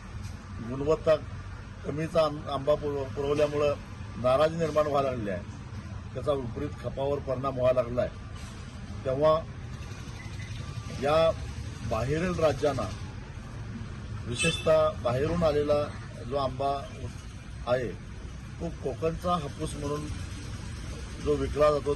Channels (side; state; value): both; identical; correlation 1.00